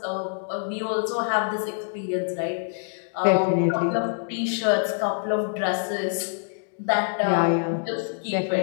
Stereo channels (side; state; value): right; silent; digital silence